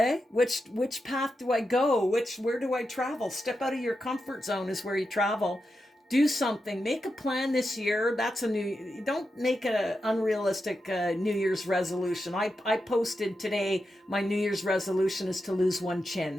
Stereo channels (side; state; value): both; normal; correlation 0.88